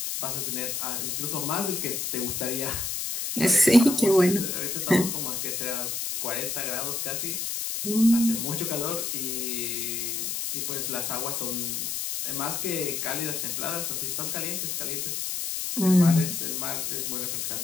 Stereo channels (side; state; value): left; noise; hiss, 2 dB below the sound